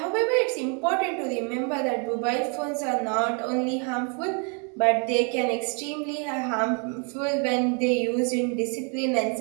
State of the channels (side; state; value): left; quieter; 37.8 dB